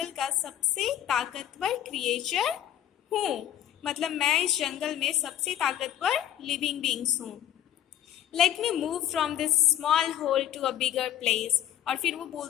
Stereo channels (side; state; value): right; quieter; 11.4 dB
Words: का सबसे ताकतवर क्रिएचर हूँ, मतलब मैं इस जंगल में सबसे ताकतवर लिविंग बींग्स हूँ। Let me move from this small hole to a bigger place. और फिर वो